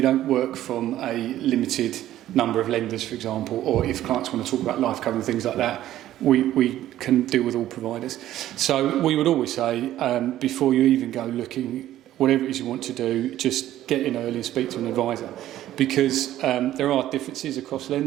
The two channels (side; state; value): left; quieter; 13.3 dB